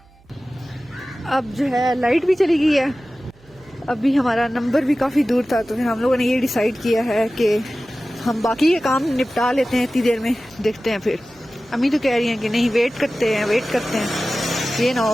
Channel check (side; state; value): right; noise; hum, 29 dB below the sound